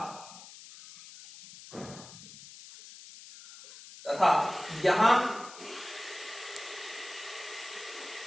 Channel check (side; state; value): left; noise; hiss, 16 dB below the sound